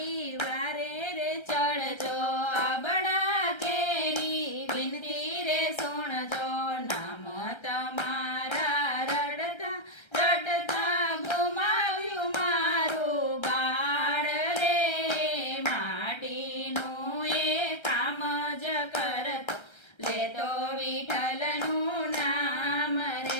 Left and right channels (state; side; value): late; right; 1.3 ms